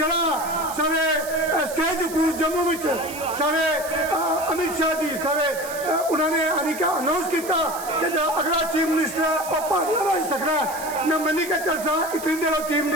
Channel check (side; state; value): right; noise; hiss, 12 dB below the sound